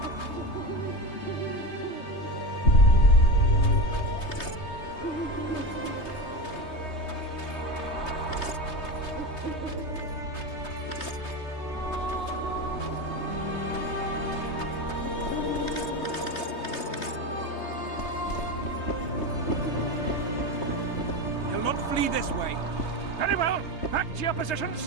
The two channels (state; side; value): late; right; 3.2 ms